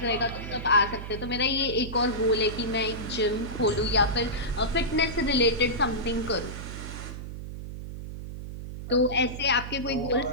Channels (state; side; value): noise; right; hum, 9 dB below the sound